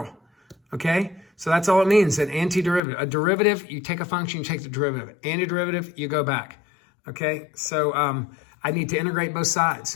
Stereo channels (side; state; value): right; drops out; at 2.8 s